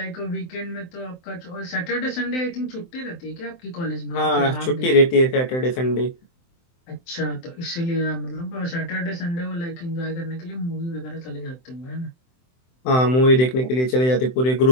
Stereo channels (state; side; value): late; right; 23 ms